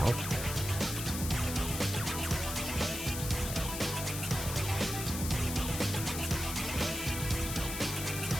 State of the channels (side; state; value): left; noise; hiss, 5 dB below the sound